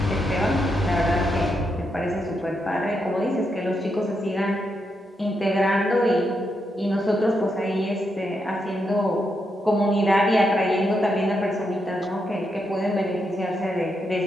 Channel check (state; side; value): normal; both; correlation 0.82